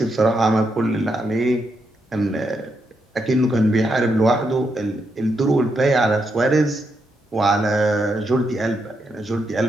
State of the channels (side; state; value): both; normal; correlation 0.81